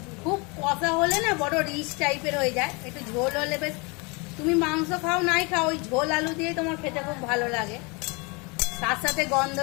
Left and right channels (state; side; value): quieter; right; 29.4 dB